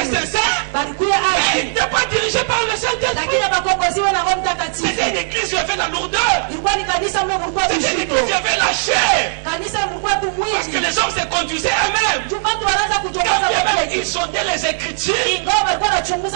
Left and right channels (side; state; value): left; silent; digital silence